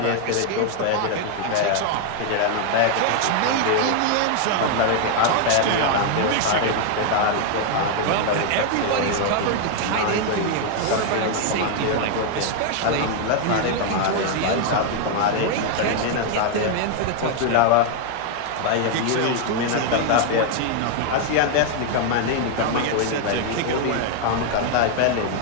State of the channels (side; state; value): both; different; correlation 0.00